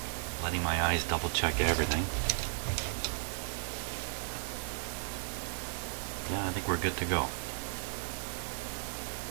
letting my eyes double check everything. Yeah, I think we're good to go.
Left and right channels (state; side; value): silent; left; 54 dB below the other